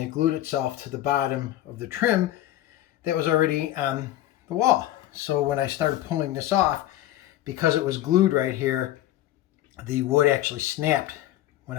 glued itself to the bottom of the trim that was already on the wall. So when I started pulling this off, because it was glued right here, the wood actually snapped when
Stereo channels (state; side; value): quieter; right; 13.9 dB